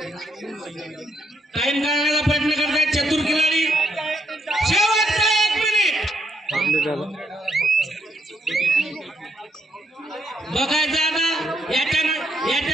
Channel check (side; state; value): both; normal; correlation 0.75